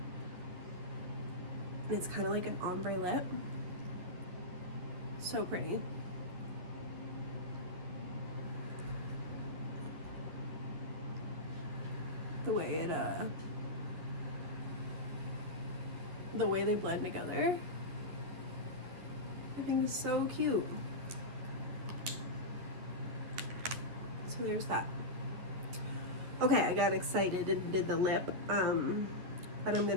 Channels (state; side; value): late; left; 11 ms